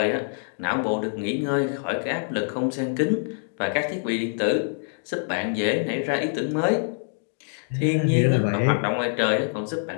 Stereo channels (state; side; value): silent; right; digital silence